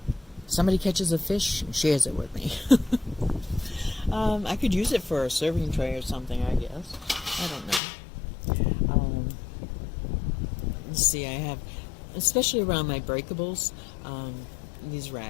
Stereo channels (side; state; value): right; drops out; at 7.8 s